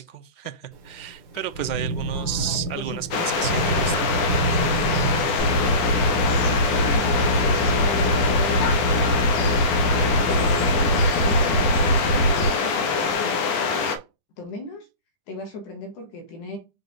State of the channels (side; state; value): right; late; 9.8 ms